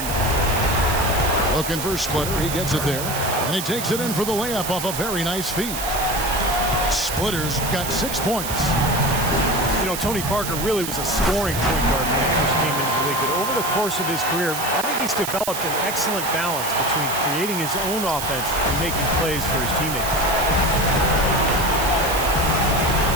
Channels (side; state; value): right; noise; hiss, 6 dB below the sound